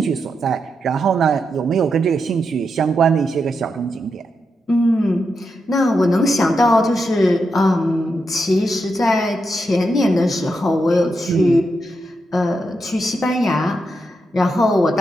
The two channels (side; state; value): both; normal; correlation 0.85